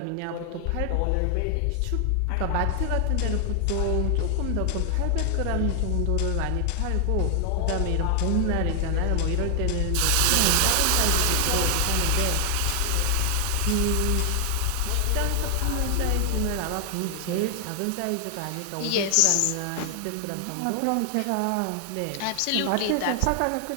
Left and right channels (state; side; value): different; both; correlation 0.00